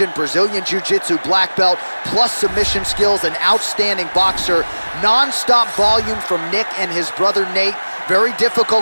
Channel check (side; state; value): both; inverted; correlation -1.00